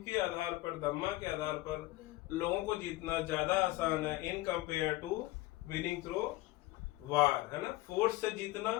के आधार पर, धम्मा के आधार पर लोगों को जीतना ज्यादा आसान है in compare to winning through war, है ना। फोर्स से जीतना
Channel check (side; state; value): right; quieter; 18.7 dB